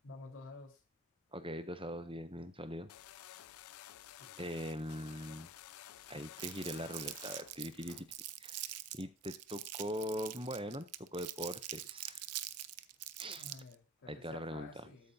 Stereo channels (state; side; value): normal; both; correlation 0.46